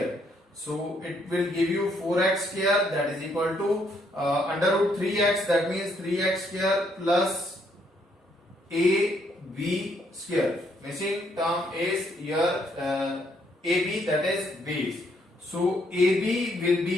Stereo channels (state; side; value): normal; both; correlation 0.71